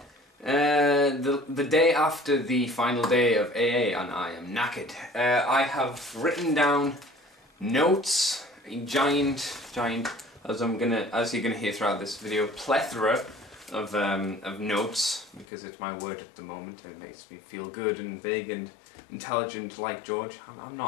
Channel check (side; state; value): right; drops out; at 15.5 s